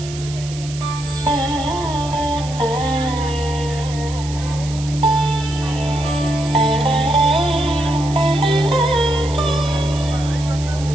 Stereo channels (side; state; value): right; noise; hiss, 14 dB below the sound